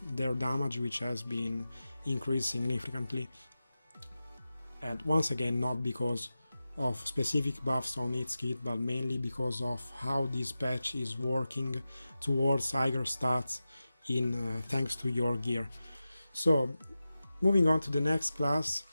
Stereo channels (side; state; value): both; inverted; correlation -0.93